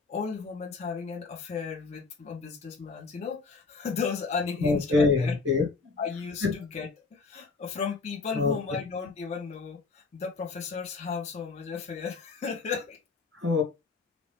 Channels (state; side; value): quieter; right; 4.2 dB